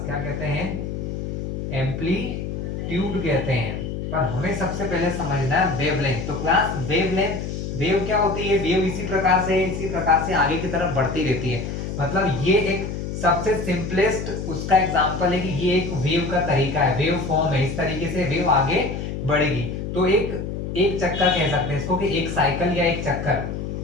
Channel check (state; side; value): noise; left; hum, 5 dB below the sound